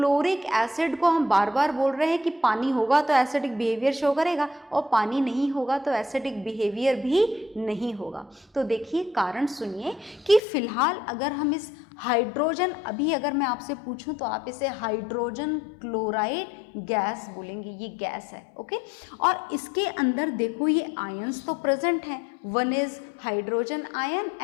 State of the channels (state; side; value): drops out; right; at 10.4 s